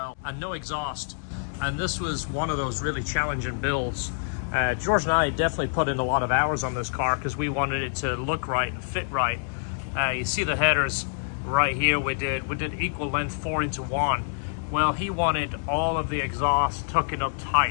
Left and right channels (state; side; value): silent; right; digital silence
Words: and no exhaust. And this was one of those really challenging builds. George and I definitely put in a lot of hours on this car because we wanted it to look right and fit right. You see the headers right here. We did equal length 4:1. Well, he wanted all of the exhaust tucking up